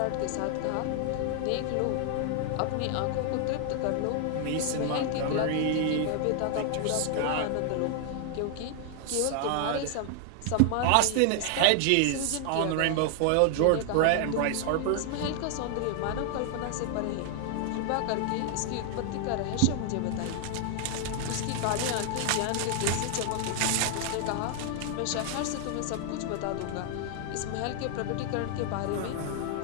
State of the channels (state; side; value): different; both; correlation 0.00